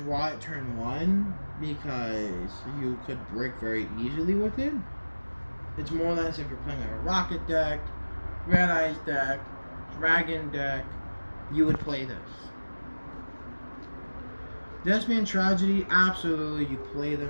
it turn 1 because you could break very easily with it. It's more or less if you're playing like a rocket deck, Red Eyes deck, Dragon deck, you would play this. Thespian Tragedy, absolutely, you play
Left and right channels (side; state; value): both; inverted; correlation -1.00